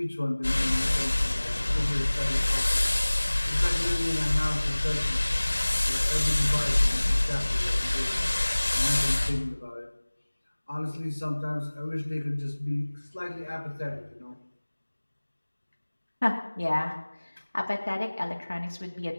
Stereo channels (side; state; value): both; inverted; correlation -1.00